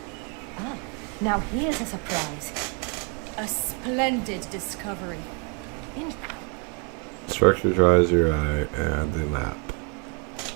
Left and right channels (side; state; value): left; quieter; 33.1 dB